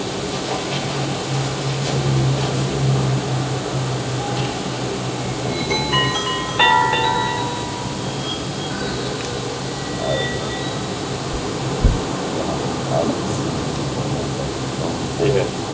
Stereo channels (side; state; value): both; identical; correlation 1.00